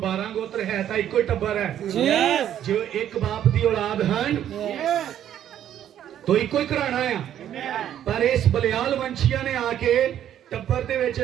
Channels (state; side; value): quieter; left; 10.7 dB